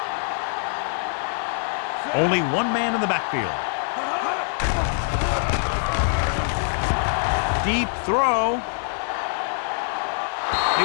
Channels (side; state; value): right; silent; 63 dB below the other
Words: Only one man in the backfield. Deep throw. He